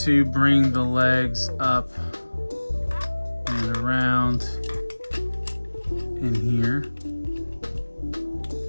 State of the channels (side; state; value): both; inverted; correlation -1.00